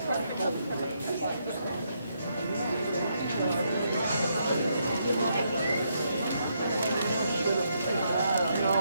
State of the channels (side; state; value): both; inverted; correlation -0.77